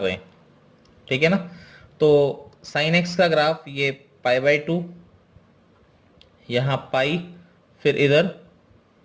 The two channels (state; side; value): identical; both; correlation 1.00